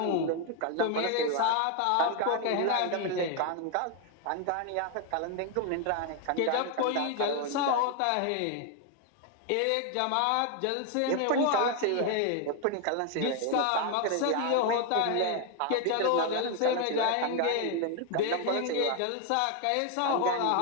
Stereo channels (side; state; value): both; different; correlation 0.01